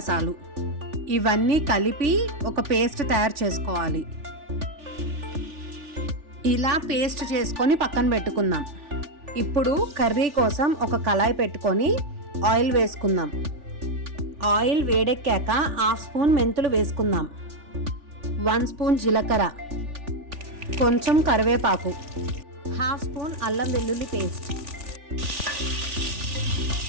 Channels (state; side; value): late; left; 3.4 ms